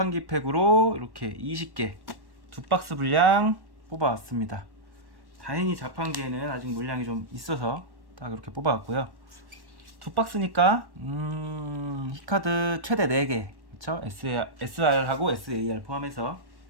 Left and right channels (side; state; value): left; late; 1.1 ms